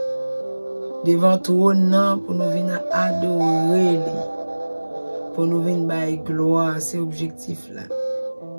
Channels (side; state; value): both; inverted; correlation -1.00